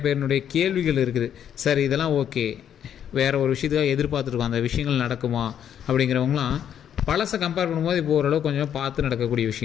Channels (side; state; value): right; quieter; 9.4 dB